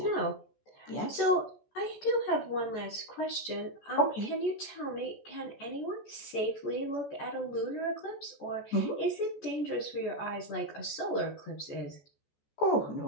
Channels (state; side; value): late; right; 14 ms